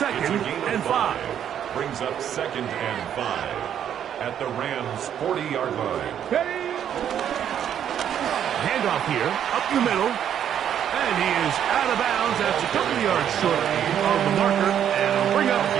and 5. Brings up 2nd and 5 at the Rams' 40-yard line. Ready. Handoff here, up the middle, and he is out of bounds. That's a couple of yards short of the marker, and bring up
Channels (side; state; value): left; quieter; 9.5 dB